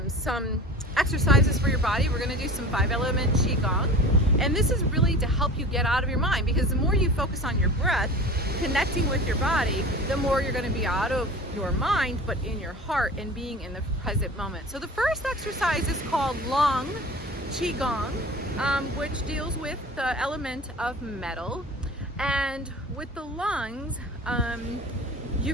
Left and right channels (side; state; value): both; normal; correlation 0.37